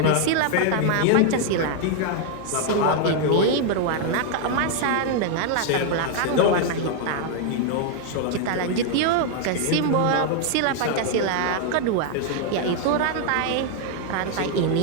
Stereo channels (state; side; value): different; both; correlation 0.00